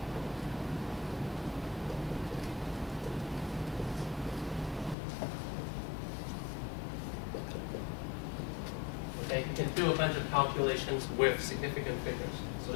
Okay, you can do a bunch of calculations with significant figures. So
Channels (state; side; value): drops out; right; at 5.0 s